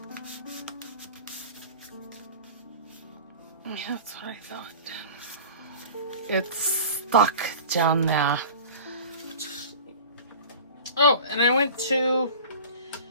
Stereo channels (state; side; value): inverted; both; correlation -0.39